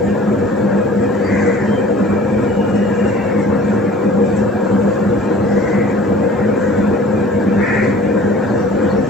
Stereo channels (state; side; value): normal; both; correlation 0.47